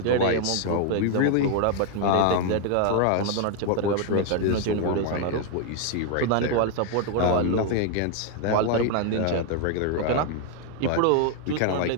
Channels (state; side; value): different; both; correlation 0.00